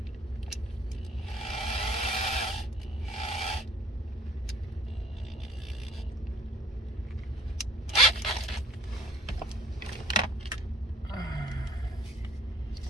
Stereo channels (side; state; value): both; normal; correlation 0.54